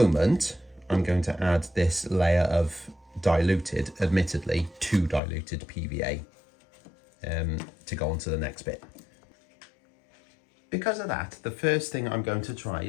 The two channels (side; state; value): right; drops out; at 5.2 s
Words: I'm going to add this layer of diluted, admittedly, too diluted PVA to go on to the next bit. Because of that, the first thing I'm going to try